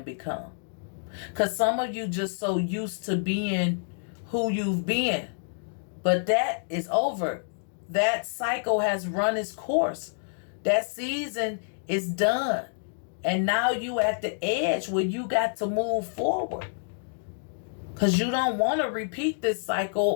become. Because some of you just so used to being who you've been. But that is over. That cycle has run its course. That season is done. And now you at the edge where you got to move forward. Because you don't want to repeat this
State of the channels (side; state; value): right; silent; digital silence